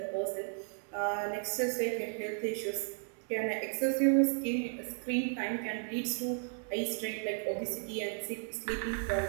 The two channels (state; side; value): silent; left; 55 dB below the other